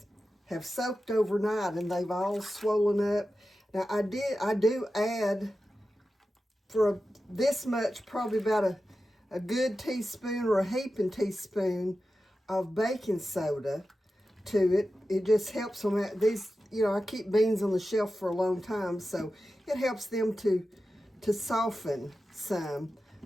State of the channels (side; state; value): both; normal; correlation 0.92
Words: have soaked overnight and they've all swollen up. Now I do add for this much, probably about a good teaspoon or a heaping teaspoon of baking soda to it. It just helps them out. These, I keep beans on the shelf for a long time, so it helps them to soften some